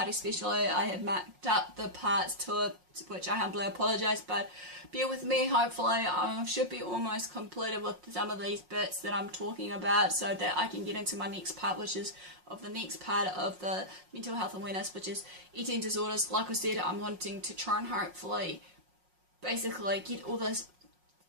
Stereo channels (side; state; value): left; late; 5.5 ms